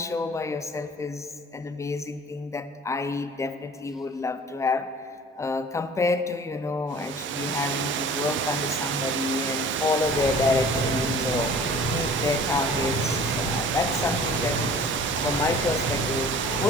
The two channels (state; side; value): normal; both; correlation 0.46